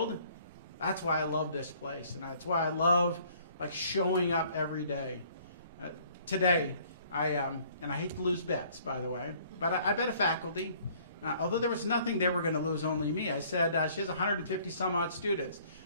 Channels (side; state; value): both; inverted; correlation -0.58